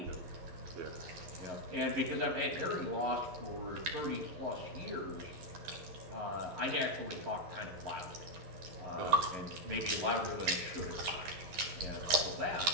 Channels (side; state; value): left; late; 11 ms